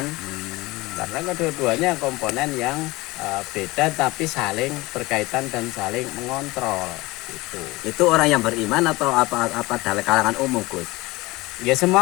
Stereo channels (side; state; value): right; quieter; 21.4 dB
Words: Karena kedua-duanya komponen yang beda tapi saling berkaitan dan saling mengontrol. Itu orang yang beriman atau apa dalam kalangan umum Gus? Ya